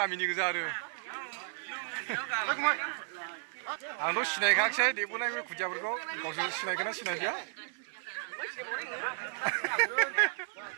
गोजा आरो आंथ' सिनायखायाखिसै देबोनाय बे खुदियाफोरखौ गावसोर सिनायगोन ना सिनायदिया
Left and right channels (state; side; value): silent; left; 55 dB below the other